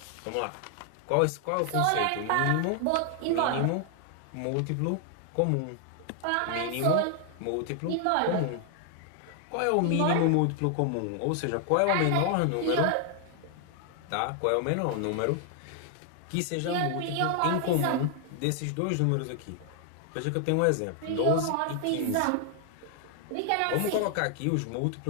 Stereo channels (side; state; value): both; different; correlation 0.00